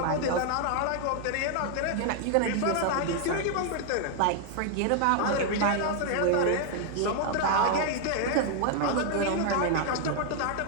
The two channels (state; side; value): different; both; correlation 0.00